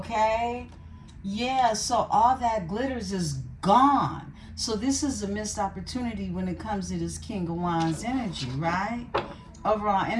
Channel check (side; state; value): both; identical; correlation 1.00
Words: Yeah, so all that glitters is gone. So this is a missed opportunity when it comes to this King of Wands energy, right? Overall